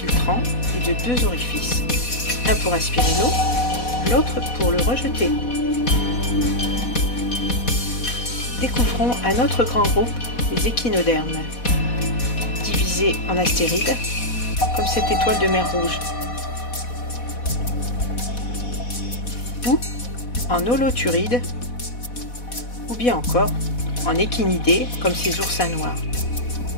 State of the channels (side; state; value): right; late; 4.1 ms